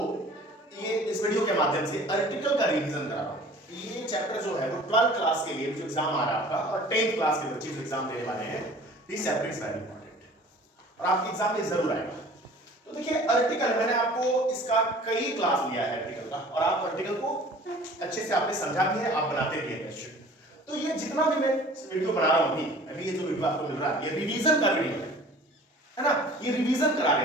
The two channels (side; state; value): both; normal; correlation 0.47